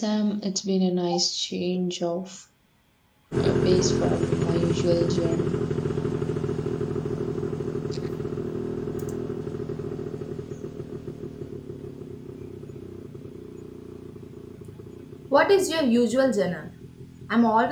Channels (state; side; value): identical; both; correlation 1.00